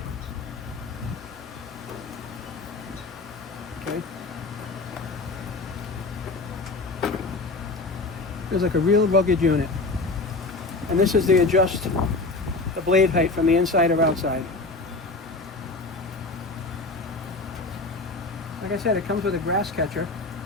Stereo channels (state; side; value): quieter; right; 3.5 dB